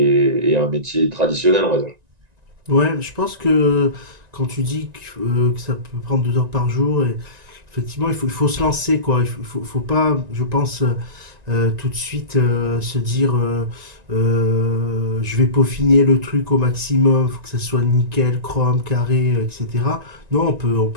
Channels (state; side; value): late; left; 1.9 ms